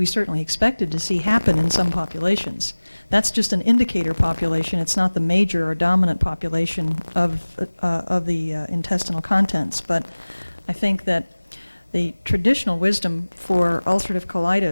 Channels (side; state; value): both; inverted; correlation -1.00